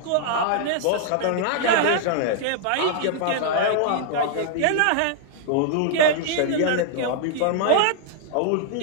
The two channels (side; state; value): both; different; correlation -0.01